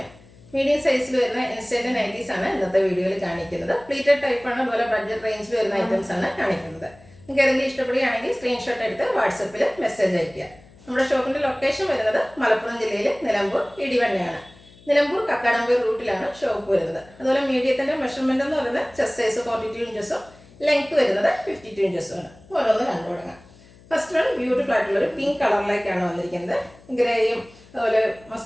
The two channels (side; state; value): left; noise; hum, 25 dB below the sound